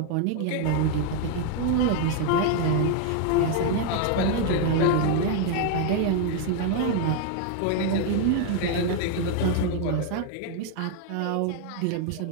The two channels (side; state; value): both; different; correlation 0.01